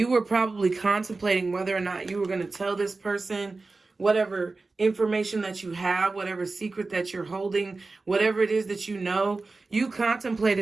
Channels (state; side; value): quieter; left; 3.7 dB